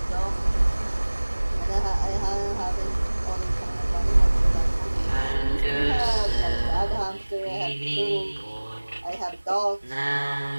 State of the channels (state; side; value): inverted; both; correlation -1.00